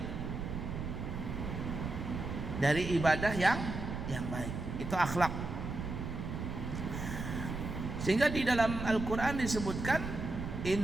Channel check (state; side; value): noise; right; rumble, 5 dB below the sound